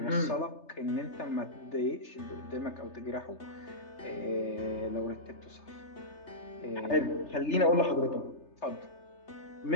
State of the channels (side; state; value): right; late; 3.3 ms